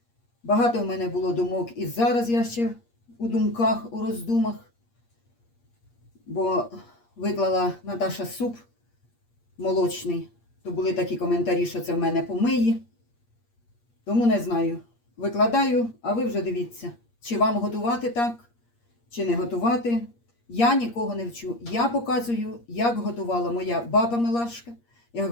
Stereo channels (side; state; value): right; late; 8.5 ms